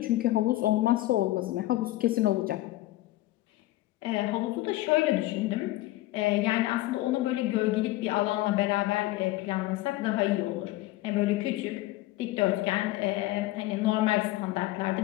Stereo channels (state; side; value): quieter; right; 17.3 dB